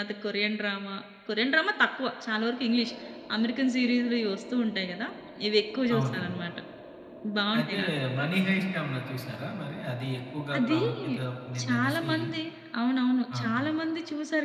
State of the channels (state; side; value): identical; both; correlation 1.00